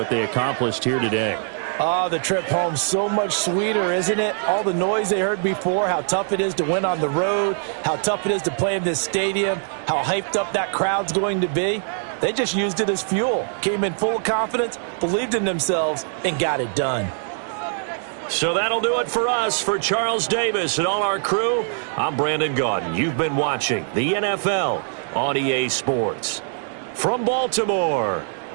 they accomplished here today. Oh, the trip home so much sweeter, isn't it? All the noise they heard before, how tough it is to win on the road, how tough it is to play in this stadium, how hyped up that crowd's going to be. They just used it as fuel, came in full of confidence, believed in themselves, and got it done. So that'll do it for us. For Charles Davis and all our crew, I'm Brandon Gaudin. You've been watching the NFL on EA Sports. From Baltimore,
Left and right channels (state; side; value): silent; left; 60 dB below the other